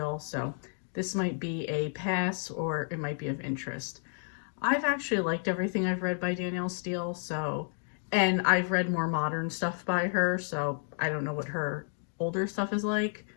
so this might be a pass or it might be of interest. I've actually liked everything I've read by Danielle Steel, and I've read more modern stuff by her, so I don't know what her older stuff is like.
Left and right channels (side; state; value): right; silent; 57 dB below the other